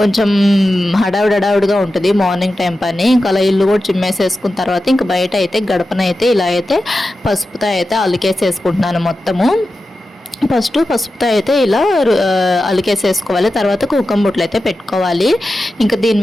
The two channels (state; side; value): normal; both; correlation 0.92